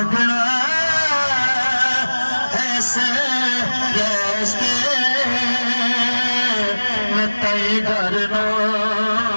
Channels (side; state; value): both; inverted; correlation -1.00